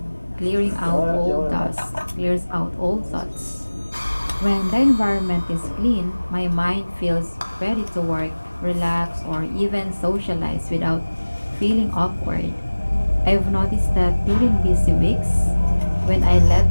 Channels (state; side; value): inverted; both; correlation -1.00